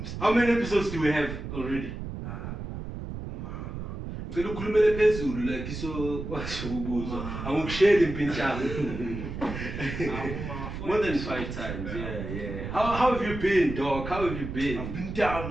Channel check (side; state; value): right; noise; rumble, 7 dB below the sound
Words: How many episodes do we have already? Ngicela ukhulumele phezulu like so washo ukubuzwa angikusheli impintshana. More than 5 times. Yeah. How have you been, dog? How have you been? I've been down,